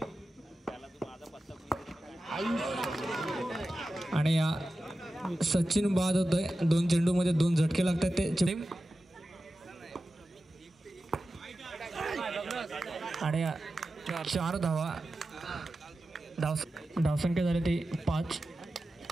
आणि या सचिन बाद होतोय. 2 चेंडू मध्ये 2 झटके लागतात ते. आणि 4 धावा. धावसंख्या झाली ती 5.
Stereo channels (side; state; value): both; normal; correlation 0.93